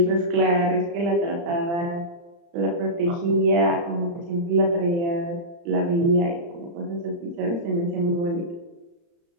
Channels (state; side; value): late; left; 35 ms